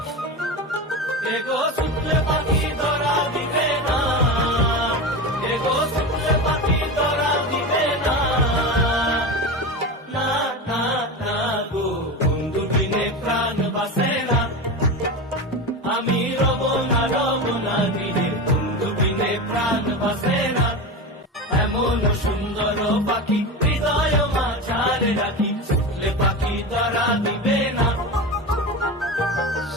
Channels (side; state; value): both; normal; correlation 0.23